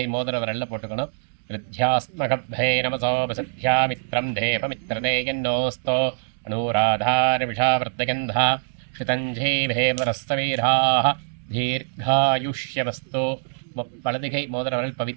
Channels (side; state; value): left; silent; digital silence